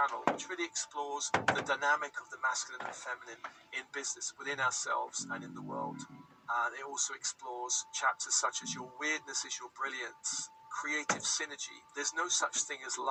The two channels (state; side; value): identical; both; correlation 1.00